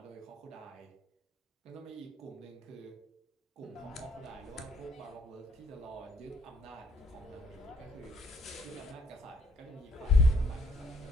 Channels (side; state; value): both; normal; correlation 0.66